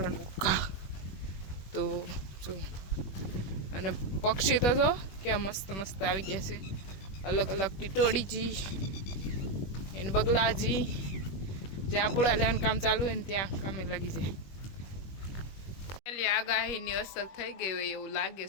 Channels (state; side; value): late; right; 21 ms